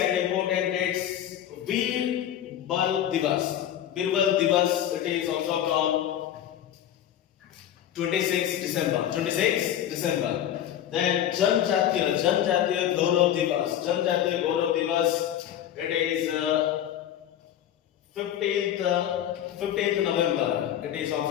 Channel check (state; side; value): quieter; right; 10.9 dB